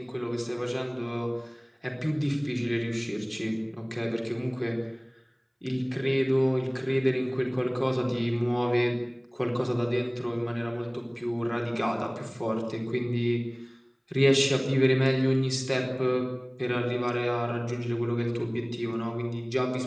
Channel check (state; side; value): identical; both; correlation 1.00